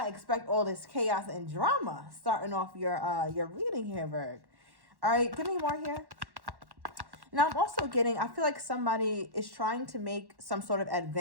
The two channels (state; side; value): late; left; 1.1 ms